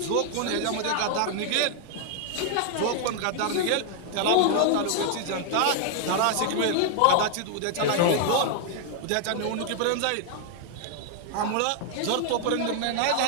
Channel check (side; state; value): both; different; correlation 0.00